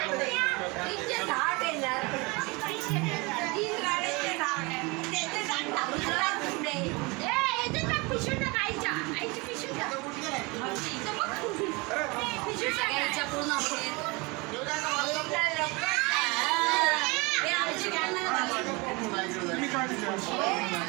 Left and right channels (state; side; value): quieter; left; 26.5 dB